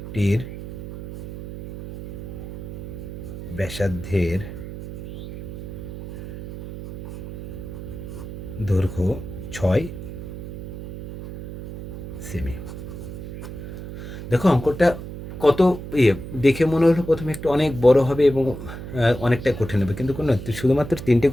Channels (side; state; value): right; noise; hum, 10 dB below the sound